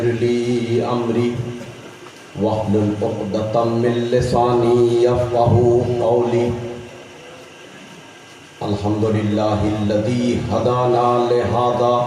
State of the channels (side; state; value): both; identical; correlation 1.00